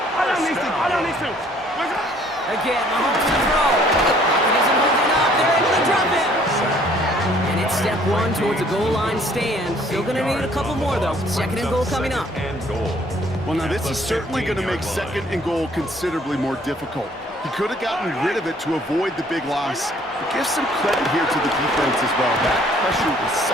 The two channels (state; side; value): normal; both; correlation 0.59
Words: Again, Mahomes to throw. Pocket isn't holding up. They're able to drop it. And it's step 1 towards a goal line stand. Still going to need a couple more, though. Second and goal coming up. And goal. Well, now this is certainly going to make second and goal considerably more difficult. He could have gotten rid of it to avoid the big loss. But give some credit here to the defense as well. That pressure was